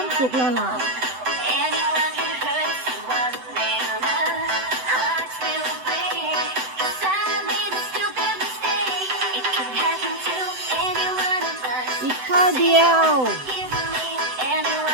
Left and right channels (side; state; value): left; late; 7.9 ms